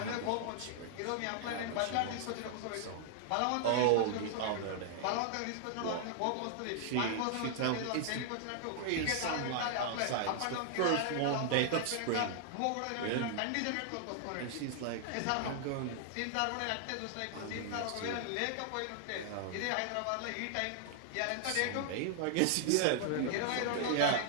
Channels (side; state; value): both; different; correlation -0.01